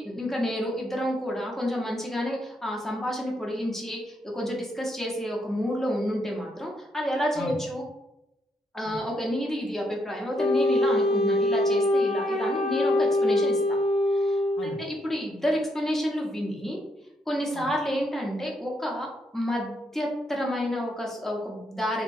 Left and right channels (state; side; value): normal; both; correlation 0.76